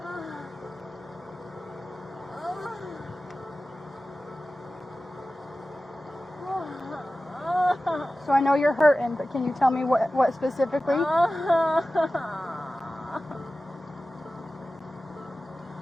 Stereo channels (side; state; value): both; normal; correlation 0.95